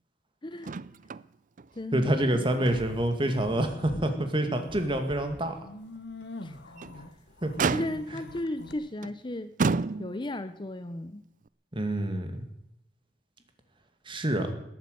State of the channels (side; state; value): both; normal; correlation 0.68